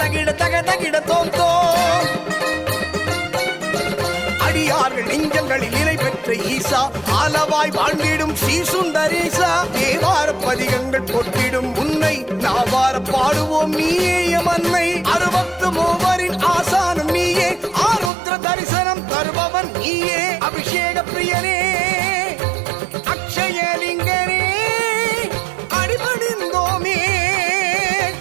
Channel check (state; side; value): drops out; left; at 18.1 s